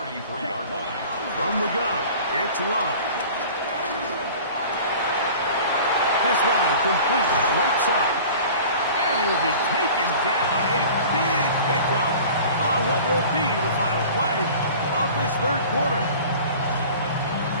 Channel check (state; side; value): inverted; both; correlation -0.42